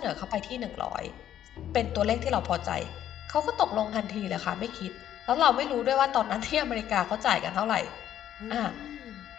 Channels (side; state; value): right; quieter; 11.0 dB